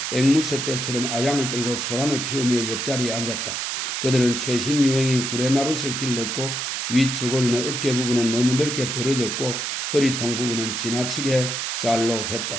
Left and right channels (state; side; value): noise; right; hiss, 2 dB below the sound